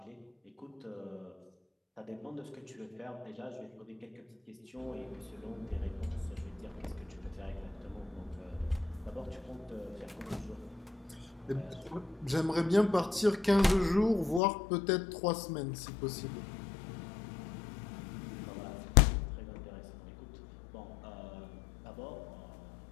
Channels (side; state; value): right; drops out; at 14.4 s